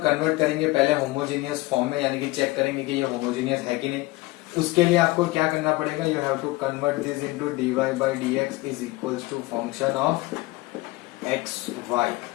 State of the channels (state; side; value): quieter; right; 20.9 dB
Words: करेंगे पहले होमोजीनियस फॉर्म में, यानी कि चेक करेंगे कि ये होमोजीनियस है कि नहीं. उसके लिए आपको क्या करना पड़ेगा, you have to convert this into d y by D x is equals to function of x y.